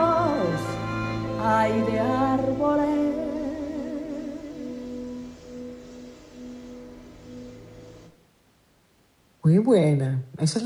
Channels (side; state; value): both; identical; correlation 1.00